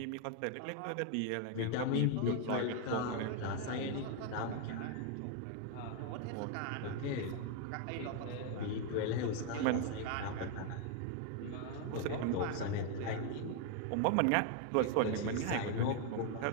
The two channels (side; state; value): both; different; correlation 0.00